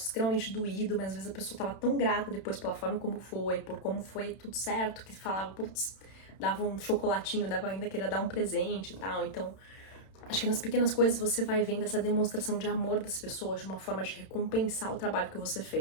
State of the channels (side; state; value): right; late; 31 ms